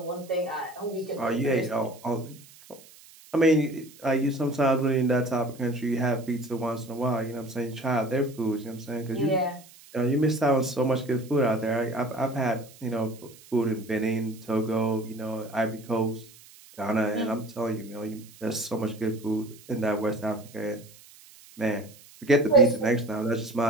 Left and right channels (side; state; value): right; noise; hiss, 23 dB below the sound